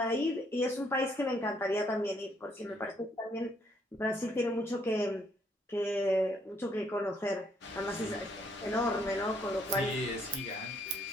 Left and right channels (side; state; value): both; normal; correlation 0.69